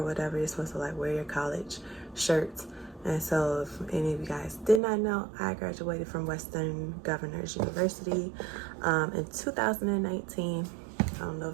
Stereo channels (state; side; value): drops out; left; at 4.8 s